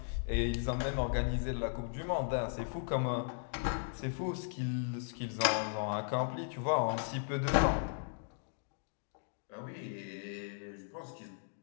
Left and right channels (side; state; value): right; silent; digital silence